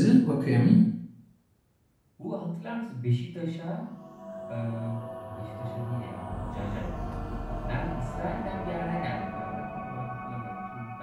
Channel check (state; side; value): identical; both; correlation 1.00